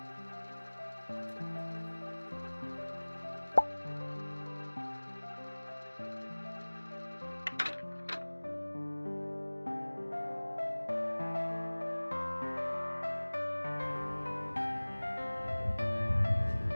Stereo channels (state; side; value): inverted; both; correlation -1.00